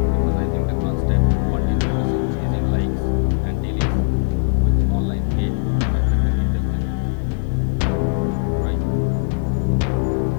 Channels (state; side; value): silent; right; 61 dB below the other